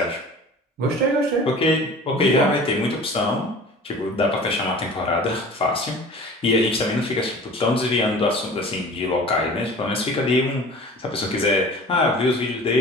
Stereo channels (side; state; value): both; normal; correlation 0.42